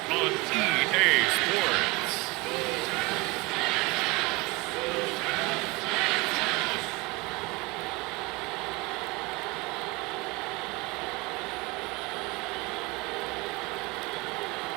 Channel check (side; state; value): left; quieter; 24.8 dB